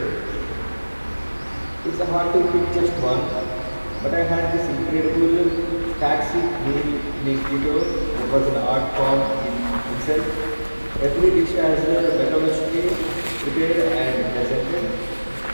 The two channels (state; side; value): inverted; both; correlation -1.00